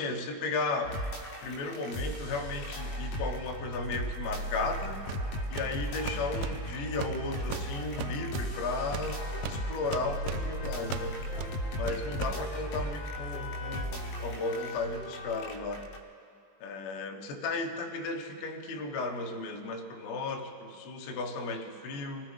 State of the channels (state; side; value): late; right; 20 ms